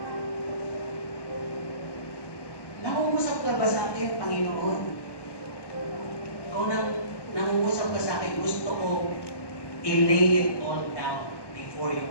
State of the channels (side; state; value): right; late; 1.1 ms